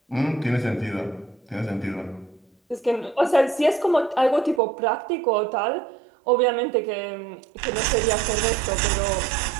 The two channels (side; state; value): left; drops out; at 4.6 s